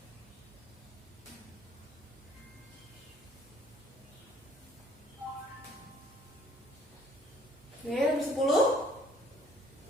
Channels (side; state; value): both; normal; correlation 0.59